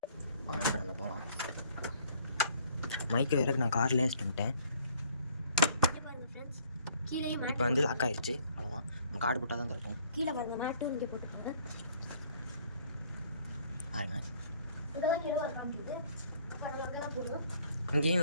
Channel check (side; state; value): both; inverted; correlation -0.60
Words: இப்போ நம்ம போகலாம். மைக்கு வேறு நான் கார்லேயே வச்சுட்டேன். இப்போ வந்து லாக் ஆயிடுச்சு. அவ்வளோதான், நம்ம கார்டு போட்டால் தான் கிடைக்கும். கீழே பாருங்க, மேட்டும் இங்கே போட்டுக்கோங்க. பாருங்க, போடுவோம். இங்கேயும்